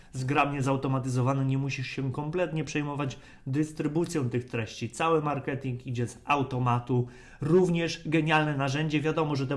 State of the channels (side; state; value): both; identical; correlation 1.00